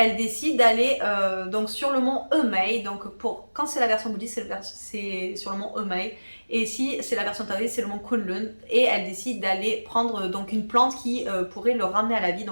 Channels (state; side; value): inverted; both; correlation -1.00